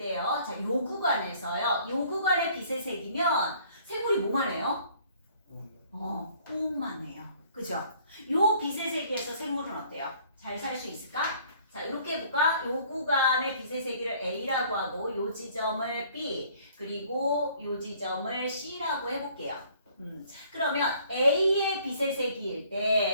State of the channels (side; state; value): both; inverted; correlation -0.58